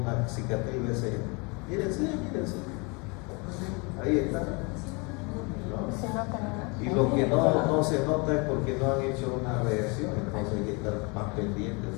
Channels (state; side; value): quieter; right; 30.1 dB